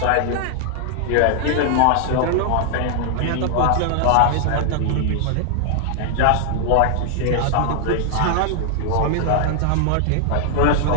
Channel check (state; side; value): different; both; correlation -0.01